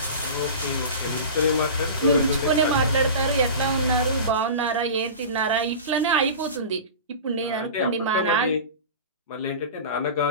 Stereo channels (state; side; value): inverted; both; correlation -0.33